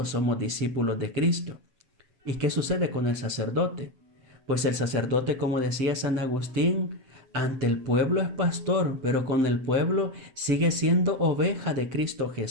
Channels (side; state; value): left; late; 7.6 ms